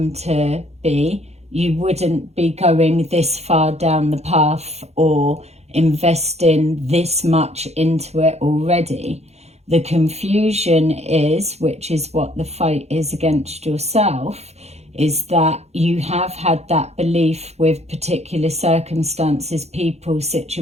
to be, you wouldn't be going this far down the path or investing this much into it already. The confusion is, which is what the fight is against yourself, is that you have had that belief with particular circumstances, people,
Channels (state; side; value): late; left; 0.31 ms